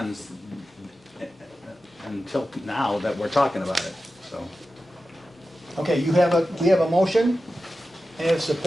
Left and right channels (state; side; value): normal; both; correlation 0.93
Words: until now that we're talking about it, so. Okay, we have a motion and a